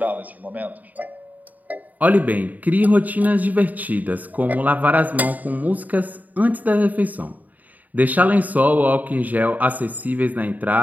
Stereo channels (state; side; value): late; left; 0.079 ms